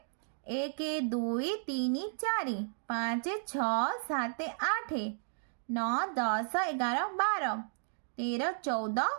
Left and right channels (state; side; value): silent; left; digital silence